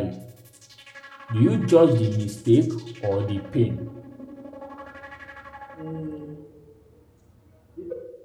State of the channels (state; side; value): identical; both; correlation 1.00